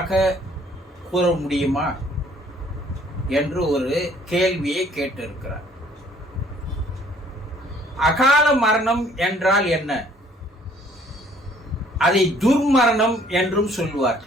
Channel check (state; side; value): normal; both; correlation 0.59